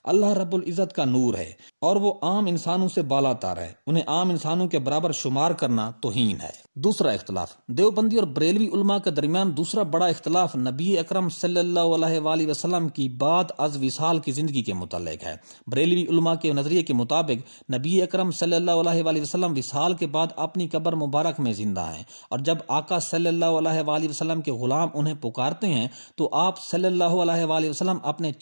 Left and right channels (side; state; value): both; inverted; correlation -1.00